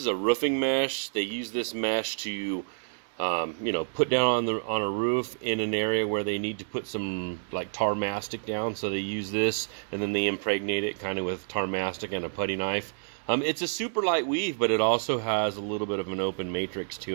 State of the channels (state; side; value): silent; left; digital silence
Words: a roofing mesh. They use this mesh to, you know, put down on a roof in an area where they need to put some like tar mastic down. So they use this, and then they impregnate it kind of with tar mastic and a putty knife. It's a super light weave, but it also has a little bit of an open matrix